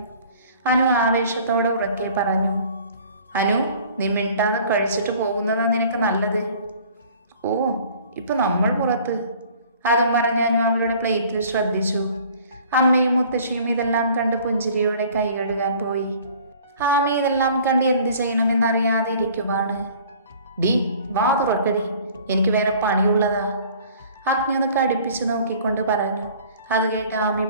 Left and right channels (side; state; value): both; inverted; correlation -0.51